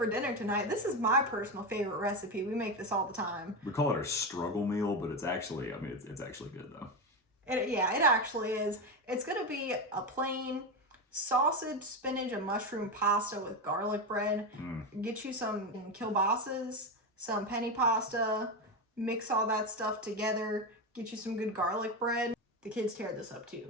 dinner tonight, this is my personal favorite recipe. We make this all the time. We call it our struggle meal, but it's actually, it's actually good, though. It actually is. It's going to be a plain sausage, spinach, and mushroom pasta with garlic bread. Get you some kielbasa's, some penny pasta, mix all that stuff together, get you some good garlic bread. The kids tear this up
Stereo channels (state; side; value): normal; both; correlation 0.15